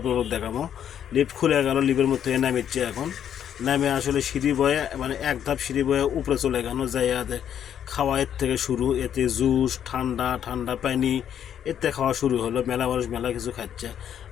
দেখাবো। লিফট খুলে গেল, লিফটের মধ্যে নামিচ্ছে এখন। নামে আসলে সিঁড়ি বয়ে, মানে এক ধাপ সিঁড়ি বয়ে উপরে চলে গেল, যাই এতে খাওয়া এর থেকে শুরু, এতে জুস, ঠান্ডা পানি এতে খাওয়া শুরু হলো। মেলা মানুষ মেলা কিছু খাচ্ছে।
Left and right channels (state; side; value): quieter; right; 9.4 dB